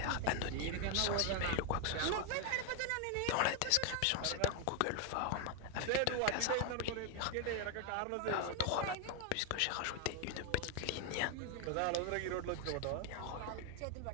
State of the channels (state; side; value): different; both; correlation 0.01